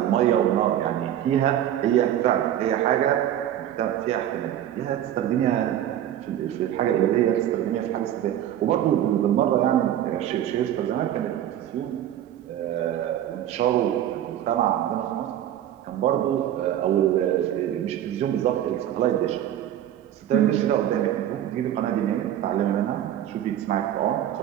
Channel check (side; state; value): left; quieter; 11.4 dB